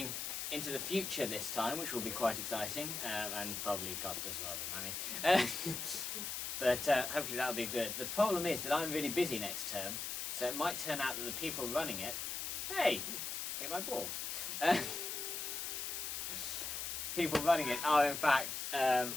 into the future this time, which will be quite exciting, and probably cost us a lot of money. But hopefully that'll be good. The problem is that I'm really busy next term, so it might turn out that the people running it... Hey! Hit my ball. People running it are in fact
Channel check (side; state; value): left; noise; hiss, 3 dB below the sound